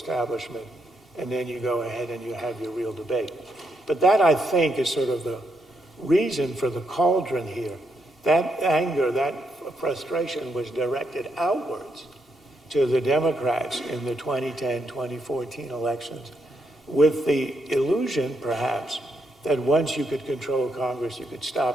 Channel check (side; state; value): both; normal; correlation 0.79